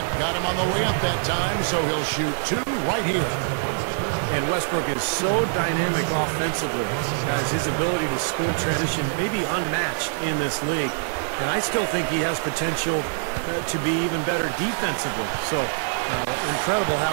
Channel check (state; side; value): silent; left; digital silence